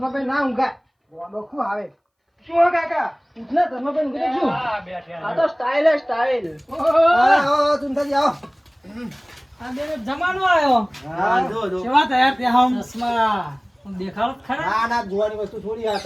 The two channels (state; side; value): identical; both; correlation 1.00